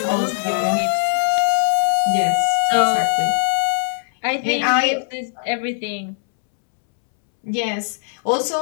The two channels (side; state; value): right; silent; 66 dB below the other